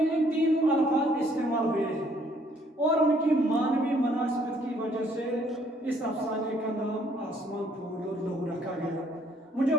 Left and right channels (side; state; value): both; normal; correlation 0.64